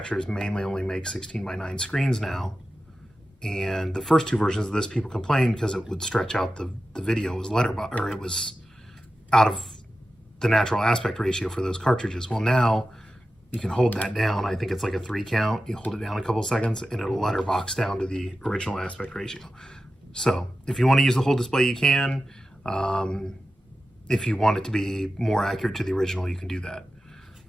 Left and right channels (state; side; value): normal; both; correlation 0.93